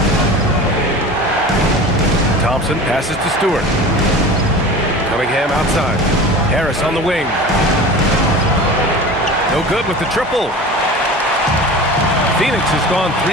Thompson passes to Stewart. Cunningham outside. Harris on the wing. No good with the triple. Phoenix has gone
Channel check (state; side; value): normal; both; correlation 0.36